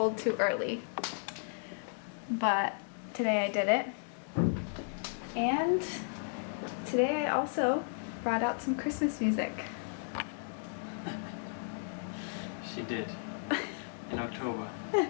too early. But today I did it, and today I also brought out some Christmas music. She did. In October.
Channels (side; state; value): right; silent; digital silence